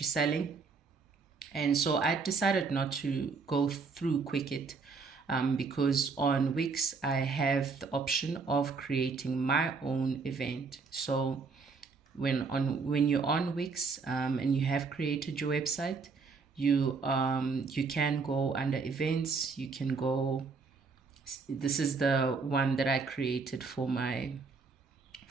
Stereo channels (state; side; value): quieter; left; 4.7 dB